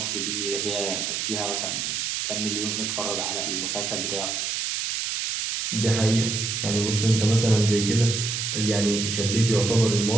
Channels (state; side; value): noise; right; hiss, 1 dB below the sound